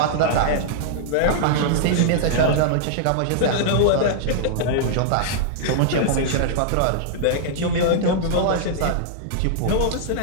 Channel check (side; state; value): both; different; correlation -0.02